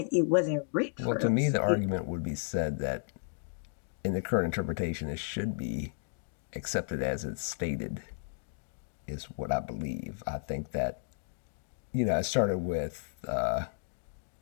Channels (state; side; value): silent; right; digital silence